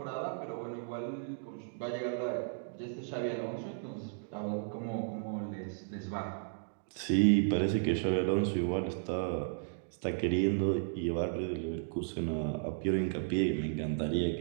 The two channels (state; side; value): silent; left; digital silence